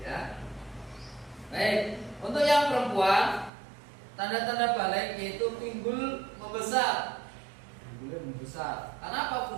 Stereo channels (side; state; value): left; drops out; at 3.5 s